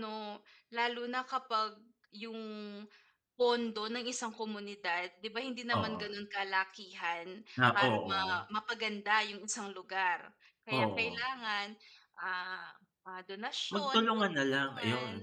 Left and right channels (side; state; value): both; identical; correlation 1.00